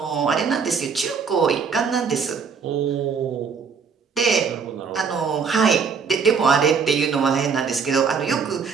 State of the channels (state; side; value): quieter; left; 5.9 dB